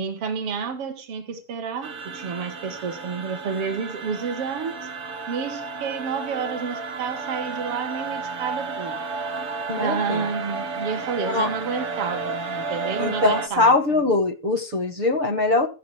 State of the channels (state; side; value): late; left; 6.7 ms